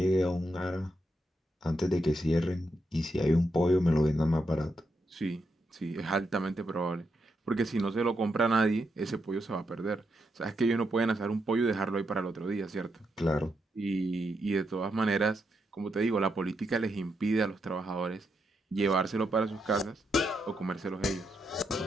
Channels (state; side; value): normal; both; correlation 0.82